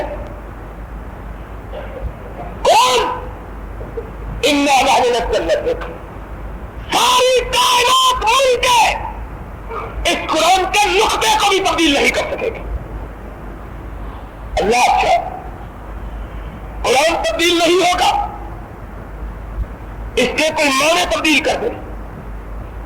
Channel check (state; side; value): identical; both; correlation 1.00